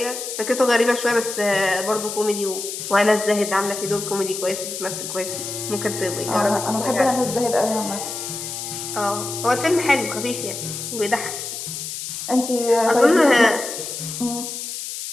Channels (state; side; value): noise; left; hiss, 7 dB below the sound